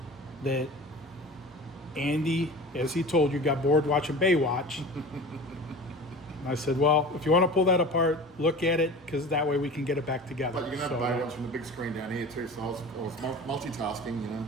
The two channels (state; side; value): normal; both; correlation 0.37